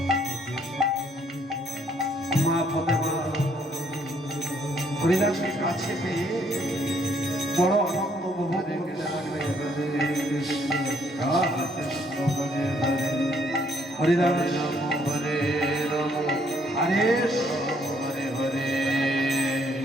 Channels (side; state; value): both; normal; correlation 0.67